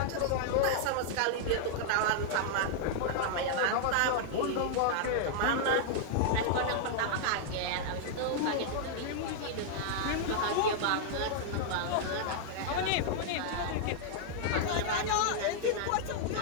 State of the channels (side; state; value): both; different; correlation -0.01